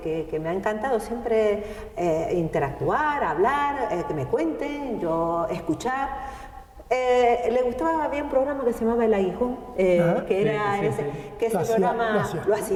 me ha encantado, siempre interactuar, hablar, que me cuenten, yo escuchar. Le gustaba, había un programa que se llamaba El Aguijón, que ese programa lo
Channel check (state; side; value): identical; both; correlation 1.00